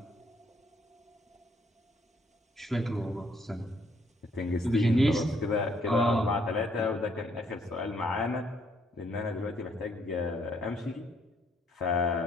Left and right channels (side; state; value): both; normal; correlation 0.68